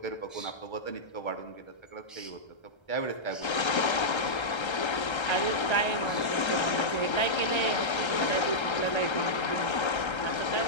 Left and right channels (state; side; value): late; right; 1.3 ms